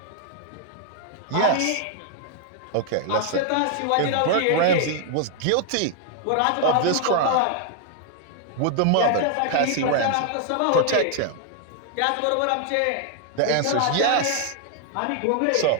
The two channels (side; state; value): both; different; correlation 0.00